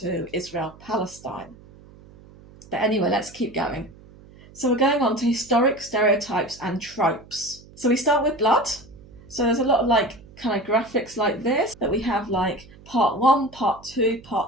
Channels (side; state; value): right; noise; hum, 22 dB below the sound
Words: Israel-Palestine. But anyway, let's keep going. So we're going on to historic stereotypes and tropes. So we start with blood. So there's a lot of kind of graphics like this that we have, like part 1, part 2,